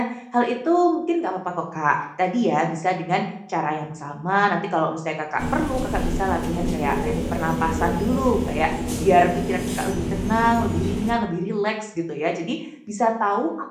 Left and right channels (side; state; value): both; identical; correlation 1.00